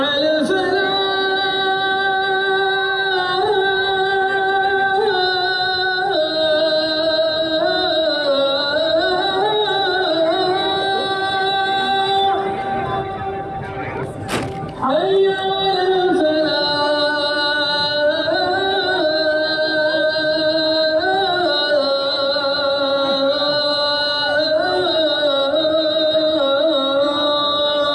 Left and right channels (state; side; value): identical; both; correlation 1.00